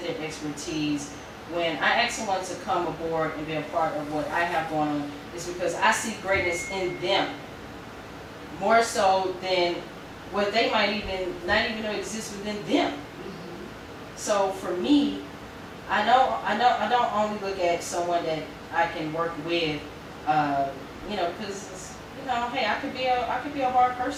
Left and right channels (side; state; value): both; identical; correlation 1.00